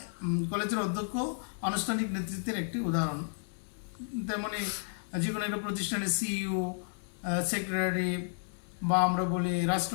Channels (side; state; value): right; silent; digital silence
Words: অধ্যক্ষ আনুষ্ঠানিক নেতৃত্বের একটি উদাহরণ। তেমনি যে কোনো একটা প্রতিষ্ঠানের সিইও, সেক্রেটারি বা আমরা বলি